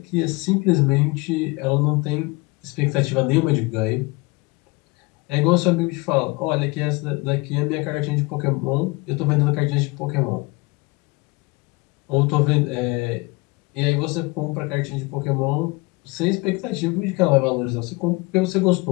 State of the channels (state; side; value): quieter; right; 25.1 dB